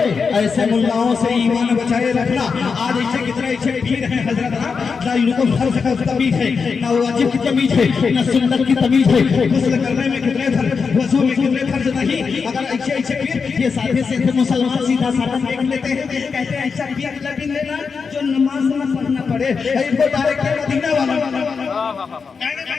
ऐसे मुल्लाओं से ईमान बचाए रखना। आज ऐसे कितने ऐसे पीर हैं हजरत ना इनको फर्ज का तमीज है, ना वाजिब की तमीज है, ना सुन्नत की तमीज है। गुस्ल करने में कितने फर्ज, वजू में कितने फर्ज नहीं। अगर ऐसे ऐसे पीर ये साथे से मुसलमान सीधा साधा देख लेते हैं, कहते हैं ऐसा पीर लगी लेना जो नमाज न पढ़ना पड़े। इनको डायरेक्ट मदीना वाला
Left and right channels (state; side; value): quieter; right; 5.4 dB